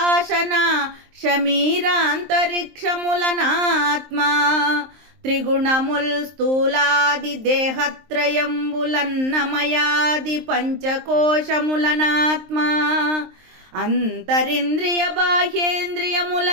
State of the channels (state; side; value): late; left; 23 ms